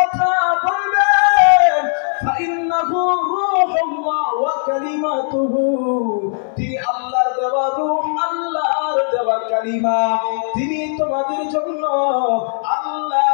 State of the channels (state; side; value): silent; right; digital silence